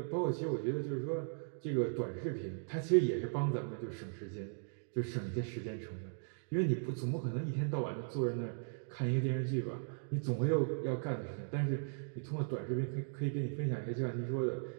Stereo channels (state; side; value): silent; left; digital silence